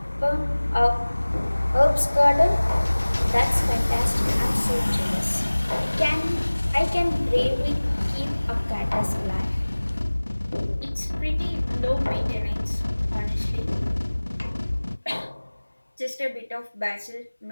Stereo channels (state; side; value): inverted; both; correlation -1.00